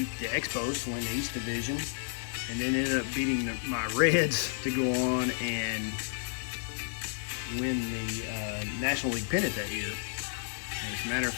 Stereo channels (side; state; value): right; silent; 57 dB below the other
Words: the Expos to win the East Division, and then ended up beating my Reds to go on and win the National League pennant that year. As a matter of